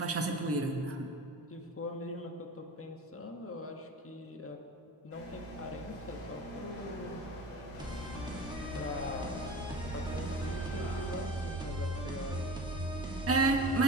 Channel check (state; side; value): normal; both; correlation 0.34